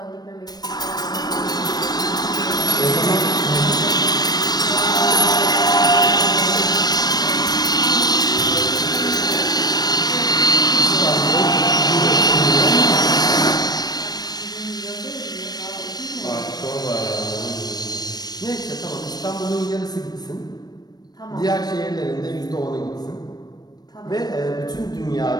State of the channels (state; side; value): late; right; 0.19 ms